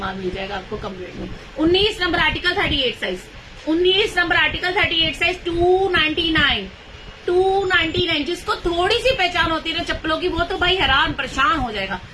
मिल जाएगा आपको कम रेट में। 19 number article 38 size, 19 number article 38 size 299, जिसको थोड़ी सी पहचान होती है ना चप्पलों की, वो तो भाई हैरान परेशान हो जाएगा,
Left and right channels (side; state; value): both; identical; correlation 1.00